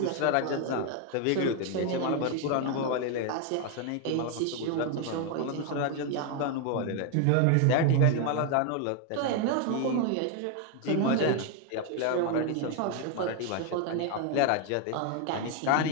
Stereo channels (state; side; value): different; both; correlation 0.01